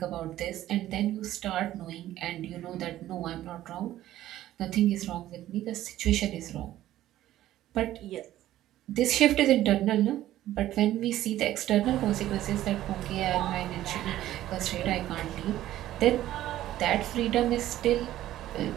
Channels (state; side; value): quieter; left; 13.8 dB